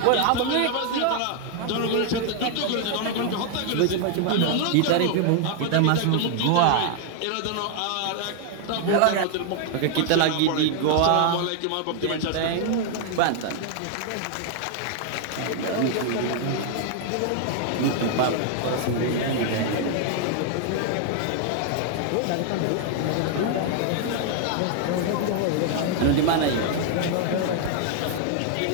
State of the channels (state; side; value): different; both; correlation 0.00